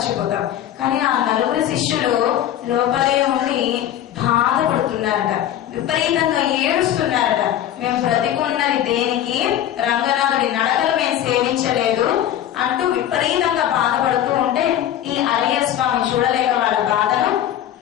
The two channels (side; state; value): right; quieter; 11.5 dB